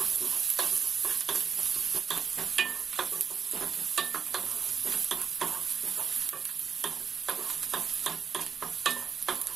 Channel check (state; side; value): quieter; left; 6.8 dB